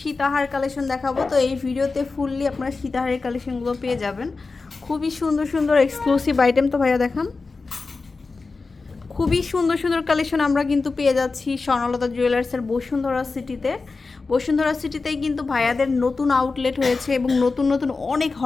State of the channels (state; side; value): quieter; right; 4.0 dB